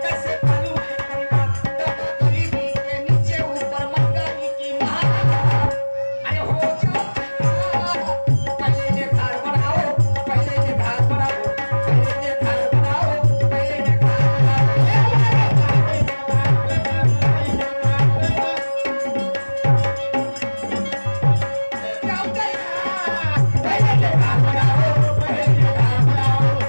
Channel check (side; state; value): both; inverted; correlation -1.00